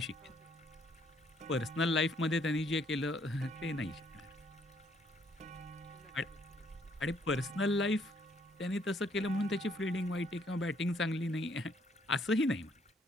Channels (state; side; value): normal; both; correlation 0.67